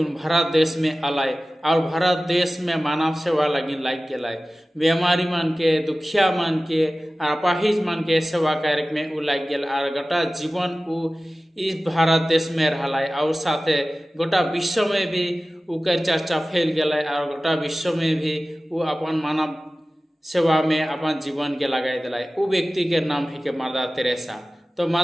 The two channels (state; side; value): normal; both; correlation 0.96